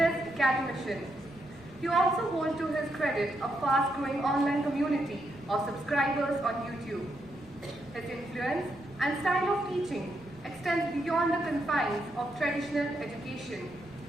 academician. He also holds to his credit a fast-growing online community of subscribers on YouTube. His influence and style of teaching extends beyond the confines of traditional education,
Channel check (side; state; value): right; noise; rumble, 23 dB below the sound